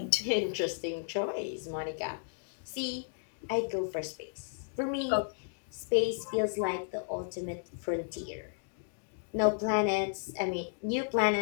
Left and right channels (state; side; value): silent; right; digital silence